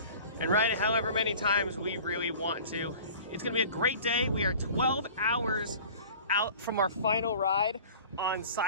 and ride it however many times we really want to. It's gonna be a great day. We are 12 hours out from our final ride on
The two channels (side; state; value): both; inverted; correlation -0.43